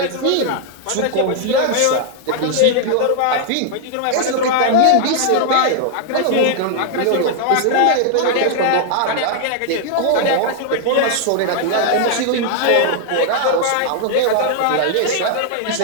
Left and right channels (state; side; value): different; both; correlation 0.00